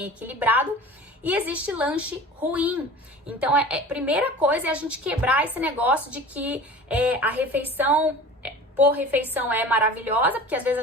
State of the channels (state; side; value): normal; both; correlation 0.39